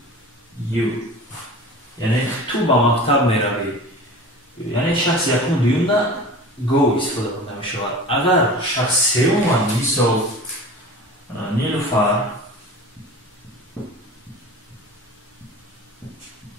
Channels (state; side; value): normal; both; correlation 0.37